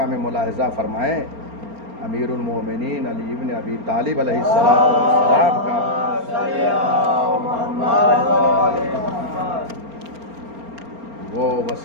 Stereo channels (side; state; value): left; late; 4.3 ms